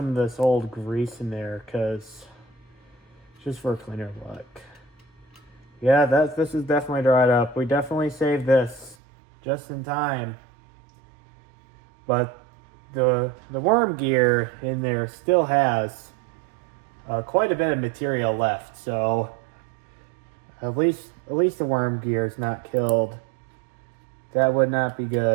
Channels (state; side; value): drops out; left; at 9.0 s